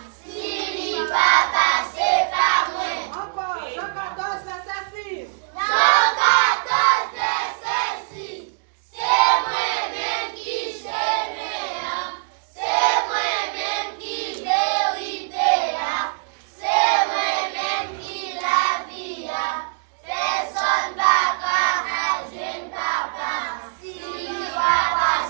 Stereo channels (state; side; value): silent; left; digital silence